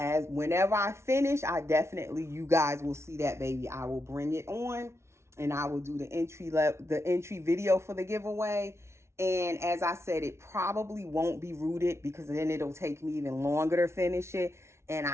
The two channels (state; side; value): late; left; 0.13 ms